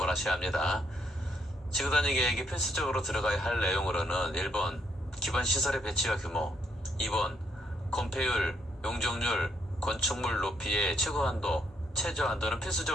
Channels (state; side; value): normal; both; correlation 0.74